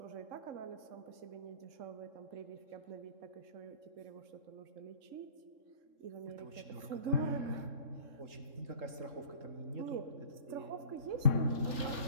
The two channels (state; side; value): late; left; 3.6 ms